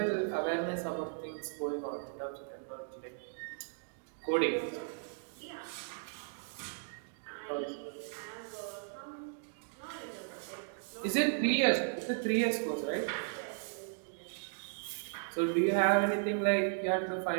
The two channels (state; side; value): silent; left; digital silence